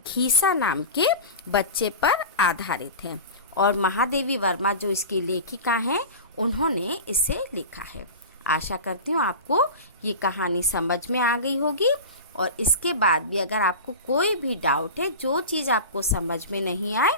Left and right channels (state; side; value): inverted; both; correlation -0.30